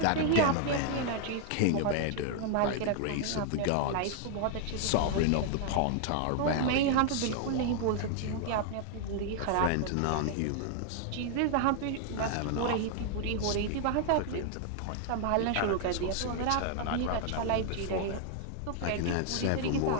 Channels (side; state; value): both; different; correlation 0.00